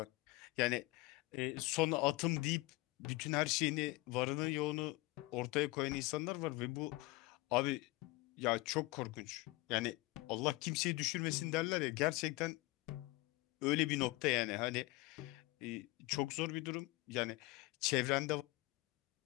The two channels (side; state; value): right; quieter; 20.8 dB